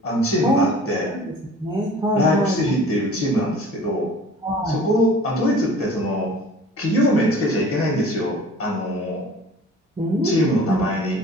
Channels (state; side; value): normal; both; correlation 0.46